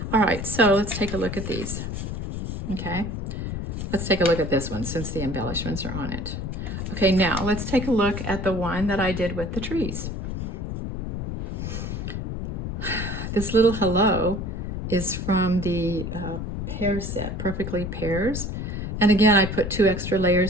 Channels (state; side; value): noise; left; rumble, 4 dB below the sound